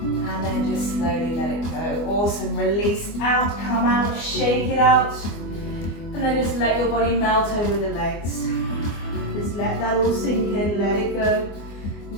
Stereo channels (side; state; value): right; late; 24 ms